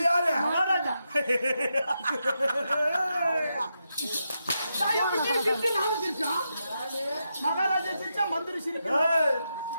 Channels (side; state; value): both; inverted; correlation -0.85